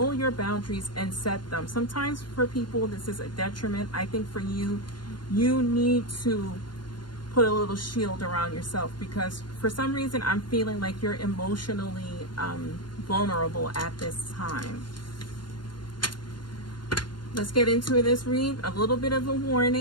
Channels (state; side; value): late; right; 0.71 ms